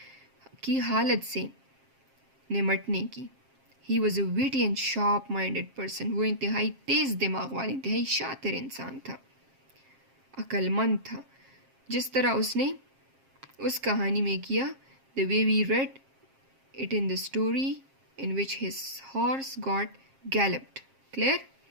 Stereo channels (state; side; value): late; left; 7.5 ms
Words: की हालत से निमटने की. He was a witty and sharp minded person. वो इंतहाई तेज़ दिमाग वाला, इंतहाई शातिर इंसान था, अक्लमंद था. जिस तरह उसने उस कहानी में किया, the way we read it in the story in which his horse got galloped. Clear?